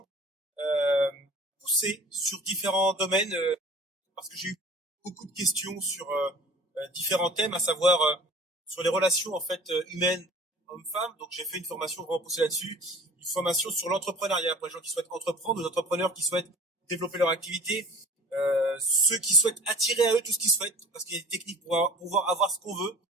euh, poussées sur différents domaines parce que j'ai eu beaucoup de questions sur différents thèmes, à savoir sur les relations en fait humaines hommes-femmes. Donc j'ai fait une formation vraiment poussée là-dessus, une formation sur l'entrepreneuriat pour les gens qui souhaitent entreprendre, les entrepreneurs qui souhaitent développer leur activité, ceux qui souhaitent attirer à eux tout ce qu'ils souhaitent, parce qu'il y a des techniques pour pouvoir avoir ce qu'on veut,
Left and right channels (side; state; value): both; normal; correlation 0.45